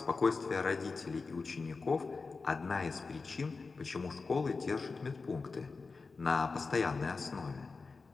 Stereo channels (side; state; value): right; quieter; 4.3 dB